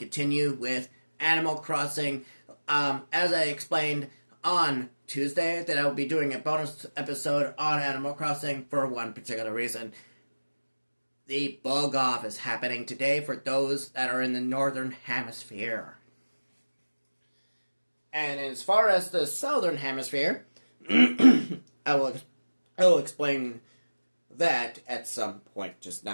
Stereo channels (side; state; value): both; inverted; correlation -1.00